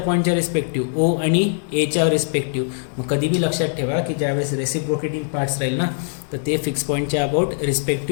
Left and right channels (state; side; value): silent; right; digital silence